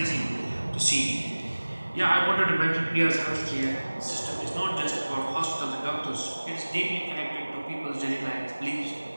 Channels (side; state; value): both; inverted; correlation -1.00